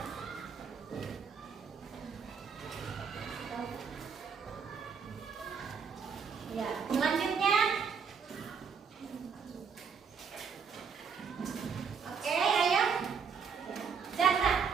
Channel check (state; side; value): quieter; left; 6.1 dB